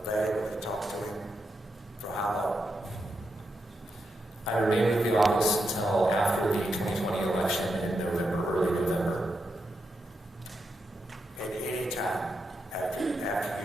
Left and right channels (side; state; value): both; normal; correlation 0.84